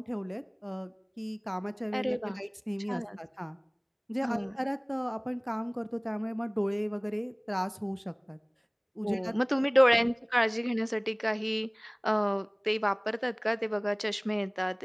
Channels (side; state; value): both; identical; correlation 1.00